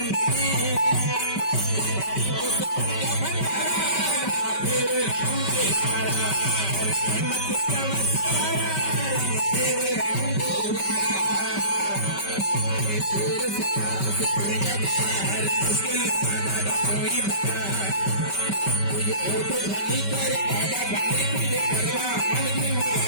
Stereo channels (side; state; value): right; late; 5.2 ms